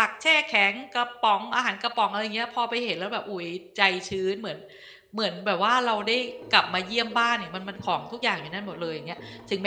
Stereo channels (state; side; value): identical; both; correlation 1.00